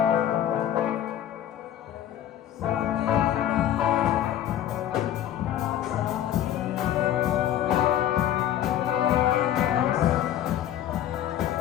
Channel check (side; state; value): right; quieter; 11.3 dB